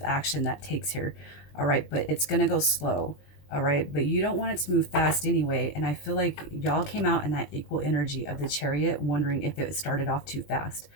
action that takes here. All right, but it's going to go slow. All right, but you don't want it to move fast anyway. And I feel like y'all came out in that equal energy of the Chariot, wondering if it started off too fast.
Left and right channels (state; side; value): late; right; 21 ms